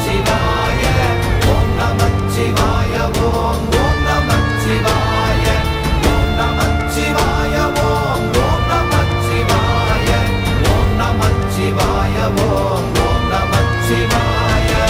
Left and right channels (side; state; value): both; identical; correlation 1.00